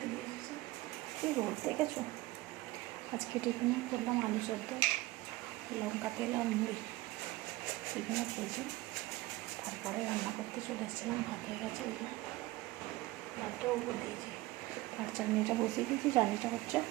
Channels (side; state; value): left; quieter; 19.1 dB